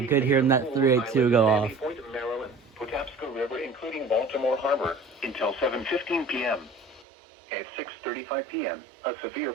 hearing that 382 go off. Point of Maryland, Patapsco River, including Baltimore Harbor, until 7:15 p.m. At 6:35 p.m., a severe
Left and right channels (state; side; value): drops out; left; at 7.1 s